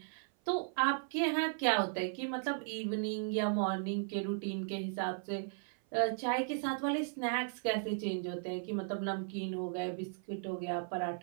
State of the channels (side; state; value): left; silent; 54 dB below the other